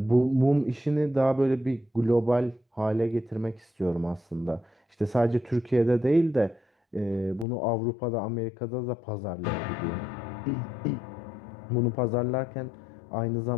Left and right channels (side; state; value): right; drops out; at 7.5 s